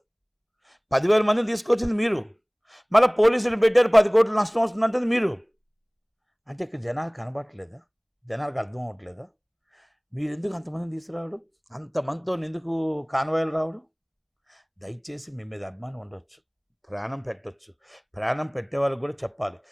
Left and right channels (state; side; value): identical; both; correlation 1.00